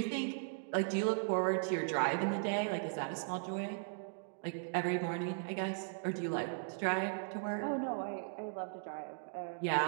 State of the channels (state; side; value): silent; left; digital silence